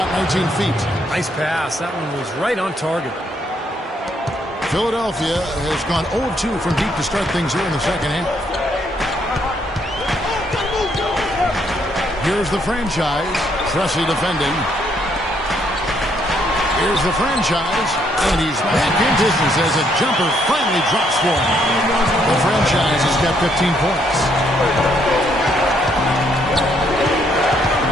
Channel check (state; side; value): normal; both; correlation 0.71